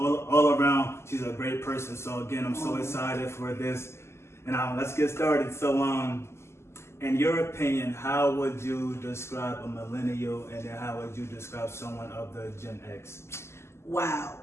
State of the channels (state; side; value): late; right; 0.13 ms